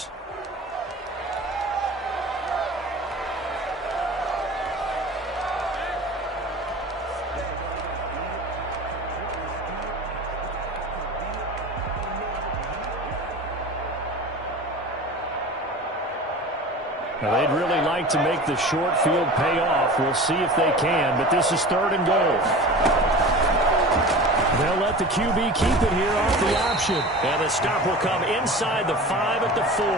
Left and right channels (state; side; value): normal; both; correlation 0.36